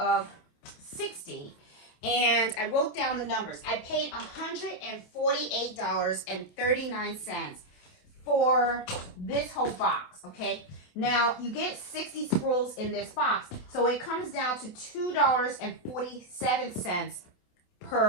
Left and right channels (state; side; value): late; right; 28 ms